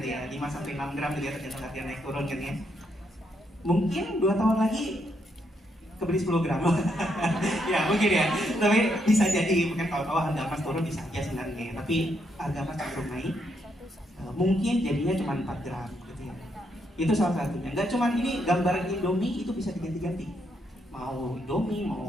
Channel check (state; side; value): normal; both; correlation 0.77